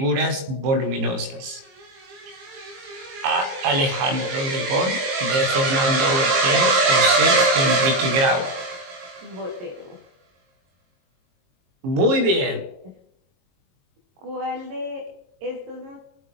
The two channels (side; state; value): left; late; 22 ms